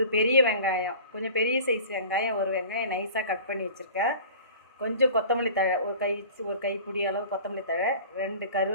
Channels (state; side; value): inverted; both; correlation -0.42